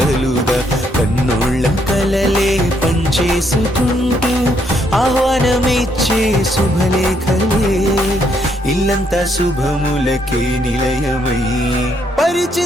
కన్నోళ్ళ కలలే పంచేసుకుంటూ ఆహ్వానమిచ్చే శుభలేఖలే, ఇల్లంతా శుభములకే నిలయమై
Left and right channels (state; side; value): normal; both; correlation 0.73